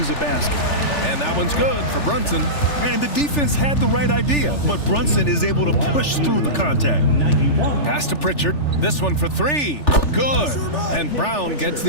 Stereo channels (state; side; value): late; right; 3.4 ms